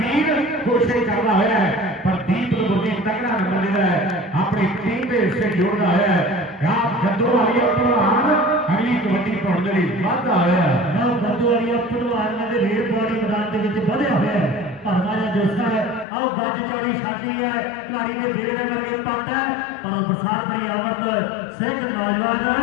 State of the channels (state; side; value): drops out; right; at 16.1 s